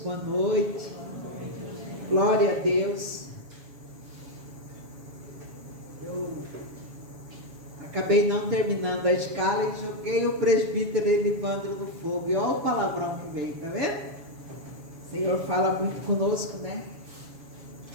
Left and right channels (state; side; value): late; left; 7.2 ms